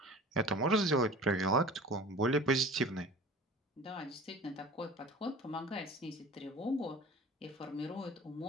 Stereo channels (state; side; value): normal; both; correlation 0.40